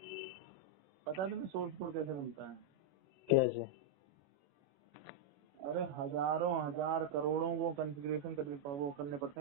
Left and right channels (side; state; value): left; late; 21 ms